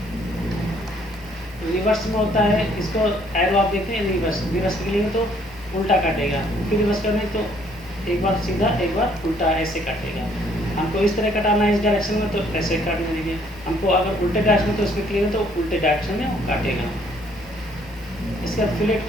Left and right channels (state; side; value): normal; both; correlation 0.64